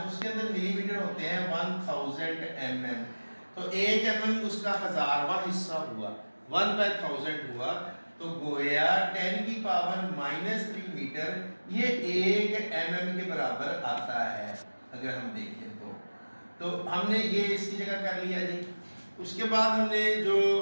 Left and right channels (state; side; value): inverted; both; correlation -1.00